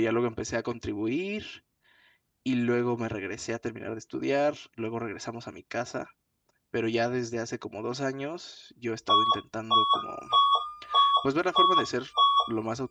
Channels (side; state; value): both; identical; correlation 1.00